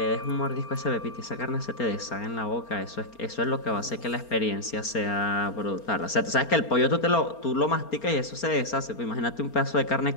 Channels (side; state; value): right; late; 4.3 ms